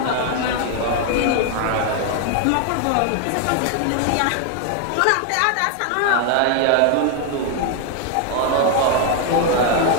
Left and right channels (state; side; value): different; both; correlation 0.01